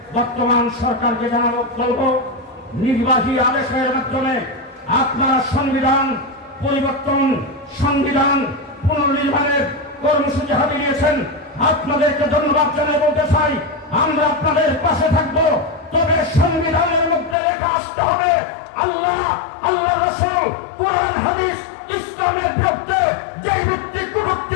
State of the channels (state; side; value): drops out; right; at 17.4 s